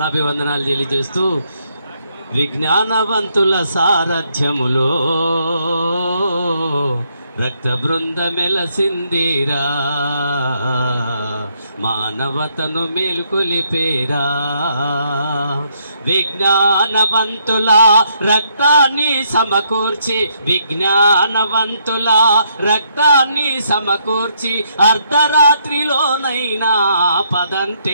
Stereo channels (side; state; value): both; inverted; correlation -0.73